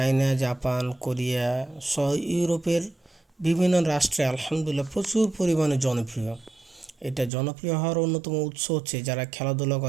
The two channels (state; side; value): drops out; left; at 7.3 s